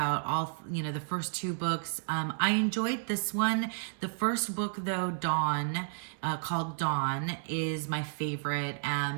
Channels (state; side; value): silent; left; digital silence